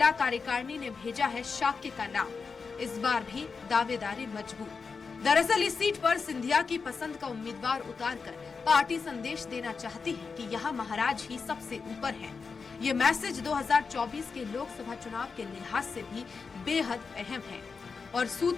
कार्यकारिणी ने भेजा है शाक्य का नाम। इस बार भी दावेदारी मजबूत। दरअसल इस सीट पर सिंधिया की पसंद का उम्मीदवार उतारकर पार्टी संदेश देना चाहती है कि यहाँ महाराज ही सबसे ऊपर हैं। ये मैसेज 2024 के लोकसभा चुनाव के लिहाज से भी बेहद अहम है। और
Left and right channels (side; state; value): right; quieter; 5.1 dB